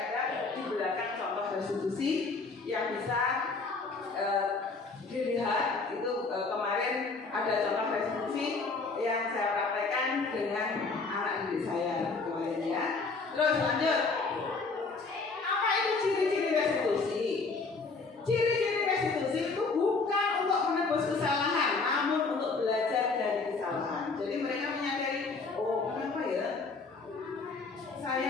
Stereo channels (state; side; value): quieter; right; 4.1 dB